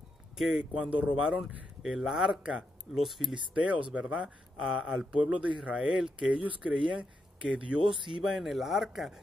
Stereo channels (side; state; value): both; normal; correlation 0.83